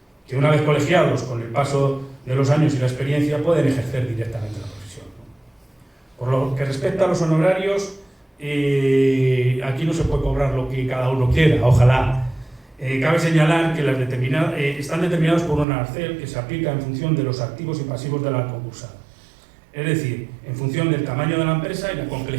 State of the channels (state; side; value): drops out; left; at 15.7 s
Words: que una vez colegiados con el paso de los años y la experiencia pueden ejercer directamente la profesión. Por lo que respecta a los honorarios, aquí no se puede cobrar lo que cada uno quiera, ojalá. Cabe señalar que están determinados por un arancel que se aplica en función de los activos y pasivos de la concursal, es decir, en función del tamaño de la empresa y la